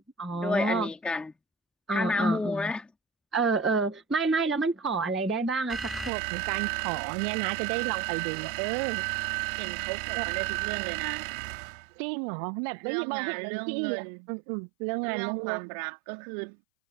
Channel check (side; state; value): left; drops out; at 6.1 s